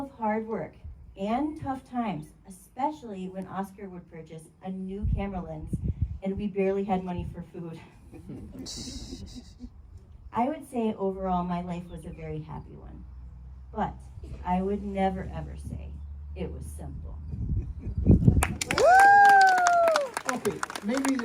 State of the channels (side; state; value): both; identical; correlation 1.00